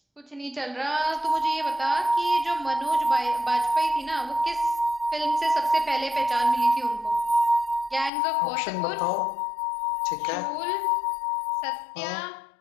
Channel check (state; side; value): drops out; right; at 8.1 s